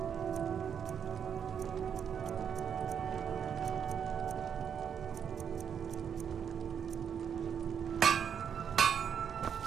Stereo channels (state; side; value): quieter; left; 7.8 dB